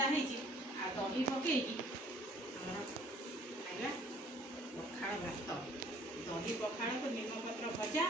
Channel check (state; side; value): normal; both; correlation 0.56